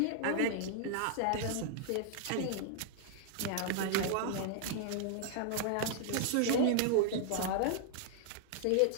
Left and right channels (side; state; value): both; different; correlation -0.01